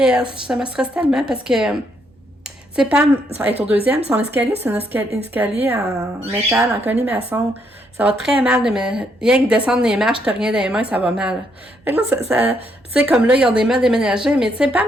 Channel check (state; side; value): normal; both; correlation 0.74